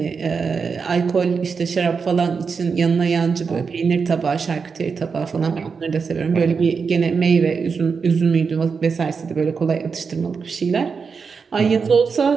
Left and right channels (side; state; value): left; quieter; 5.4 dB